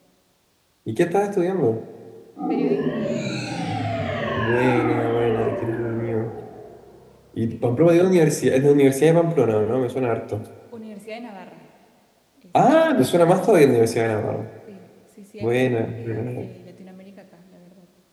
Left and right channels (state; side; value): identical; both; correlation 1.00